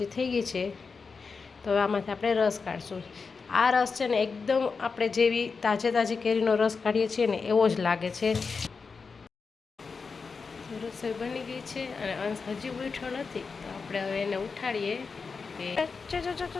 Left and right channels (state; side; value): quieter; right; 4.9 dB